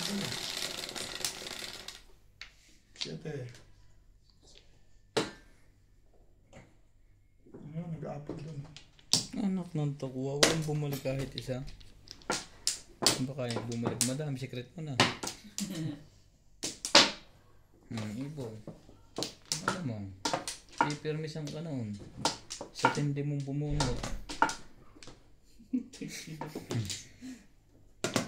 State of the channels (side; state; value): both; identical; correlation 1.00